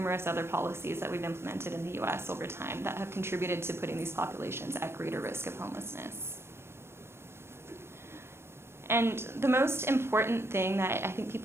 other policies that we've implemented in the US over time that have contributed to putting these populations at greater risk of homelessness. And the most important thing that I think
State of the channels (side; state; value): left; late; 0.12 ms